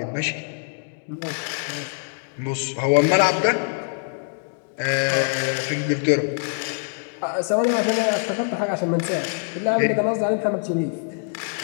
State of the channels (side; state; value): right; silent; digital silence